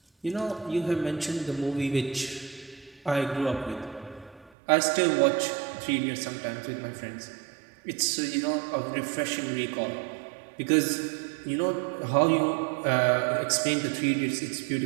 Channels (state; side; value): drops out; left; at 4.5 s